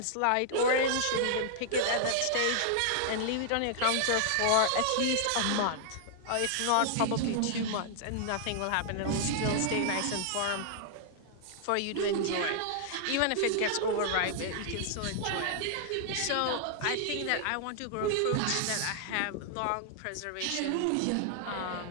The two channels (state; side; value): different; both; correlation -0.01